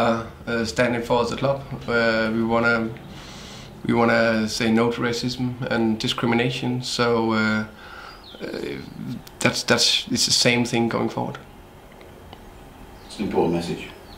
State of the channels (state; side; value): identical; both; correlation 1.00